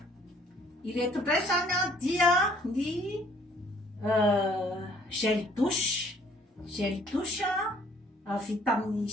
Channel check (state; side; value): normal; both; correlation 0.59